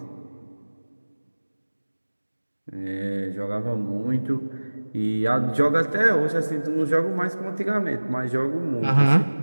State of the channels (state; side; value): inverted; both; correlation -1.00